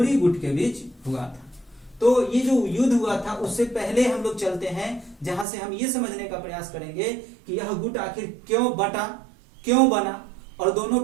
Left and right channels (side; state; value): left; drops out; at 5.5 s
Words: गुट के बीच हुआ था। तो ये जो युद्ध हुआ था उससे पहले हम लोग चलते हैं, जहां से हम ये समझने का प्रयास करेंगे कि यह गुट आखिर क्यों बटा, क्यों बना और दोनों